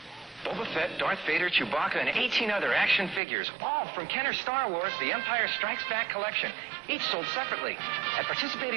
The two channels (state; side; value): drops out; left; at 3.2 s